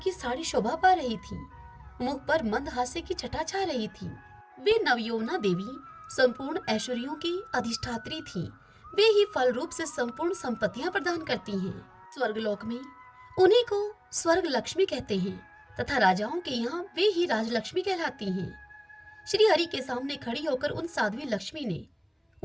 साड़ी शोभा पा रही थी। मुख पर मंद हास्य की छटा छा रही थी। वे नवयौवना देवी संपूर्ण ऐश्वर्यों की अधिष्ठात्री थी। वे ही फल रूप से संपूर्ण संपत्तियां प्रदान करती हैं। स्वर्गलोक में उन्हीं को स्वर्ग लक्ष्मी कहते हैं तथा राजाओं के यहाँ वे ही राजलक्ष्मी कहलाती हैं। श्री हरि के सामने खड़ी होकर उन साध्वी लक्ष्मी ने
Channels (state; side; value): identical; both; correlation 1.00